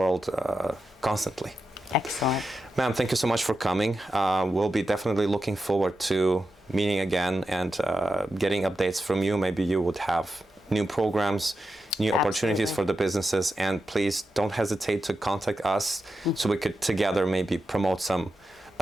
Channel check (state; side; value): normal; both; correlation 0.89